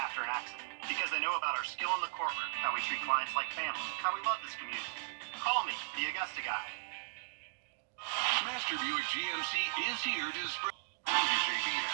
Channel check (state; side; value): silent; left; digital silence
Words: an accident because they know about our skill in the courtroom, how we treat clients like family, how we love this community. Call me, the Augusta guy. Master Buick GMC is here to spread WJBF